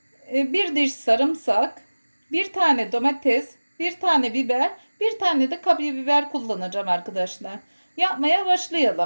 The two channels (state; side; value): inverted; both; correlation -1.00